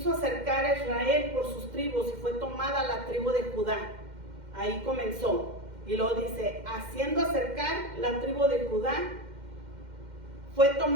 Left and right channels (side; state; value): left; late; 2.1 ms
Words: acercar a Israel por sus tribus, y fue tomada la tribu de Judá. Ahí comenzó. Y luego dice: haciendo acercar la tribu de Judá, fue